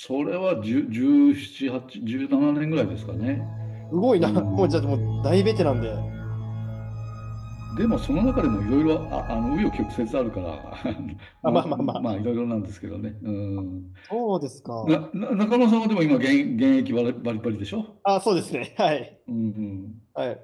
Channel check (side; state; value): both; identical; correlation 1.00